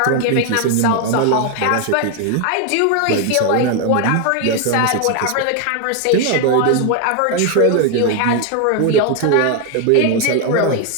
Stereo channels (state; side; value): different; both; correlation 0.01